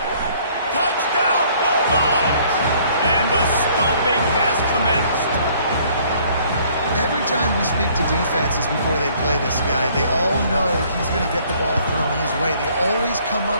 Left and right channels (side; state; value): both; inverted; correlation -0.60